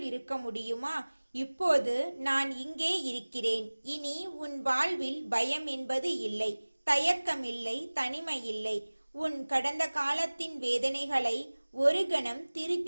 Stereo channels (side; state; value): both; inverted; correlation -1.00